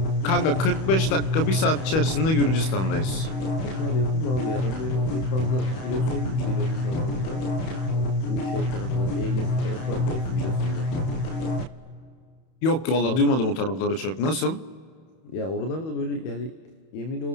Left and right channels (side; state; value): right; late; 31 ms